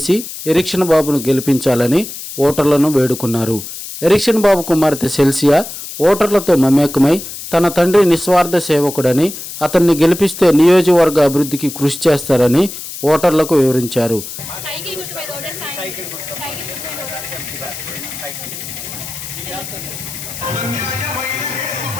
ఎరిక్షన్ బాబును గెలిపించాలని ఓటర్లను వేడుకున్నారు. ఎరిక్షన్ బాబు కుమార్తె సెల్సియా ఓటర్లతో మమేకమై తన తండ్రి నిస్వార్థ సేవకుడని, అతన్ని గెలిపిస్తే నియోజకవర్గ అభివృద్ధికి కృషి చేస్తారని ఓటర్లకు వివరించారు.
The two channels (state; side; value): noise; left; hiss, 10 dB below the sound